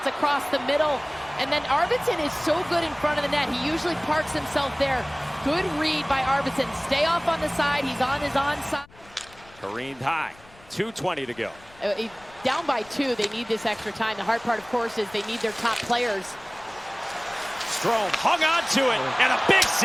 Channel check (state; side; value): noise; left; rumble, 25 dB below the sound